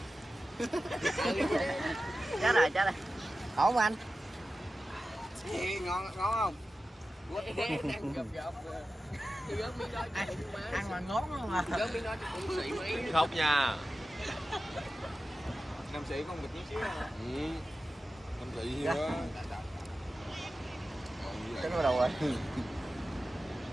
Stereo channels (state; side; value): normal; both; correlation 0.94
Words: Chết rồi. Ổn không anh? Ngon không? Đang gập. Ăn mà ngón không à? Gớm miếng đó cho cũng xị mấy. Khóc nha. Nam sĩ con bịch chút xíu hả? Nam sĩ nhiều quá. Cái nó đầu rồi.